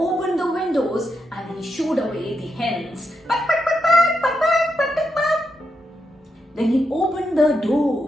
the windows and he shooed away the hens. Quack, quack, quack, quack, quack, quack, quack, quack, quack. Then he opened the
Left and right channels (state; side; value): normal; both; correlation 0.84